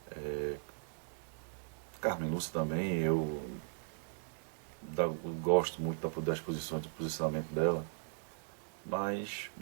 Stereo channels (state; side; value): silent; left; digital silence